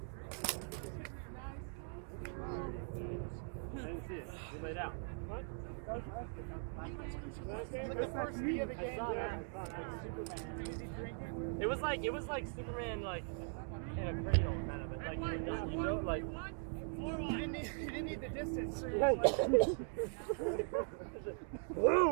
I didn't see it. You laid out. What? It was like Superman like in a cradle kind of it. Like you know like You didn't need the distance.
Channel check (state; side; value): silent; left; 51 dB below the other